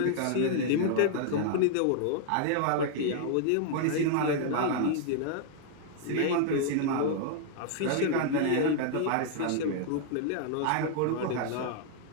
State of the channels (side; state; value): both; different; correlation 0.00